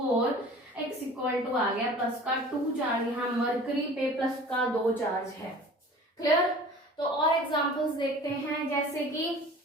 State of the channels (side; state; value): both; normal; correlation 0.44